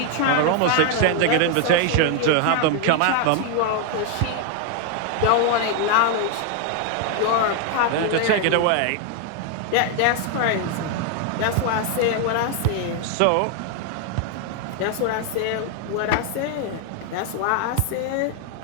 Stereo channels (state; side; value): different; both; correlation 0.01